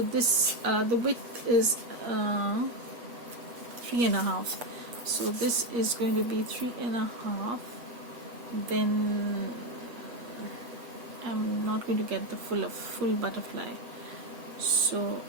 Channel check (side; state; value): left; late; 8.4 ms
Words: this the width is 3.5, so this is going to be 3.5. Then I'm not going to get the full butterfly, so